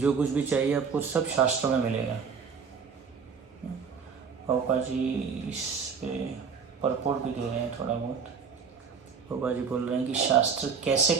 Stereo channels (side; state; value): left; quieter; 6.0 dB